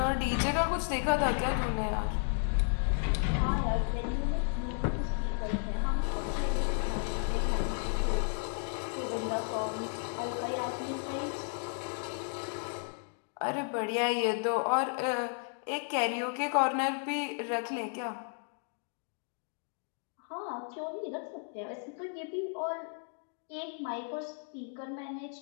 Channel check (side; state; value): right; silent; 55 dB below the other